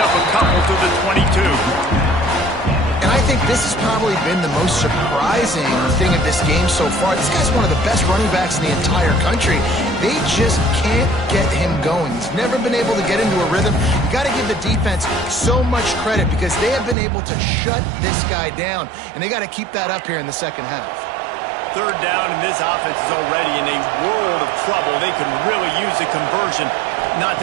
a couple to the 22. And I think this has probably been the most surprising thing of this game so far. This guy's one of the best running backs in the entire country. They just can't get him going. He's never been able to get into a rhythm. You got to give the defense so much credit because they have been able to shut this guy down, and they got to keep that up here in the second half. Third down, and this offense is already in a world of trouble. They could really use a conversion, not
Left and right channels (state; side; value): drops out; left; at 16.9 s